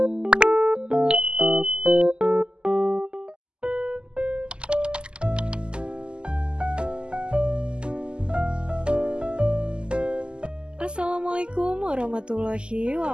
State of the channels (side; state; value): left; late; 0.049 ms